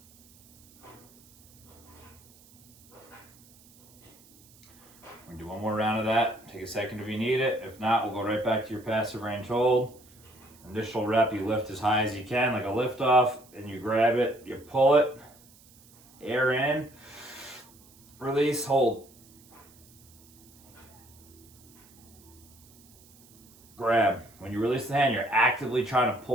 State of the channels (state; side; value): noise; right; hiss, 26 dB below the sound